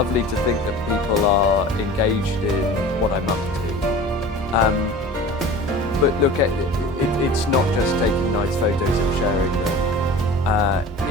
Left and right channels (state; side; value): normal; both; correlation 0.39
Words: to think that people are engaged in what I'm up to. But look, it's not just taking nice photos and sharing them.